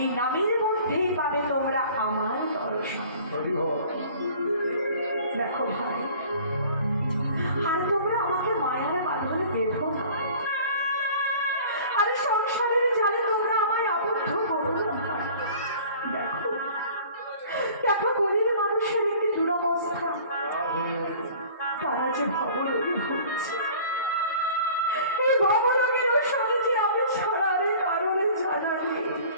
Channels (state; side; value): inverted; both; correlation -0.47